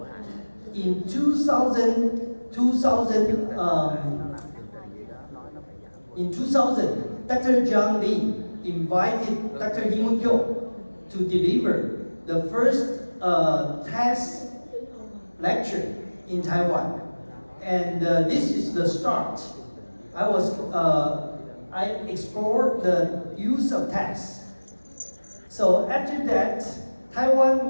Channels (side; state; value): both; inverted; correlation -1.00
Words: in 2000, Dr. John Lin invited Dr. Hee-Mun Kyung to deliver the first test lecture in Taiwan. And this is the start. I explored the use of tests. So after that, Taiwan